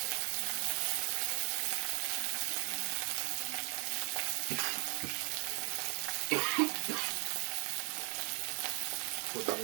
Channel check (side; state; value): left; quieter; 35.6 dB